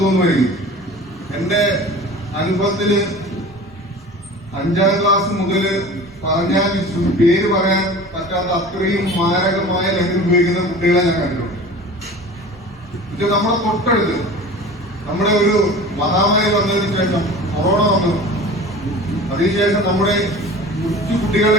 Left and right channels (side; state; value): both; normal; correlation 0.39